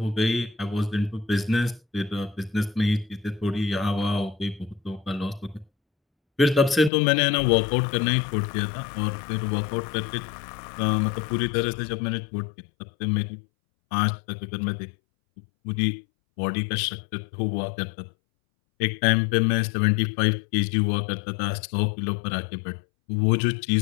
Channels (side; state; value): right; drops out; at 6.9 s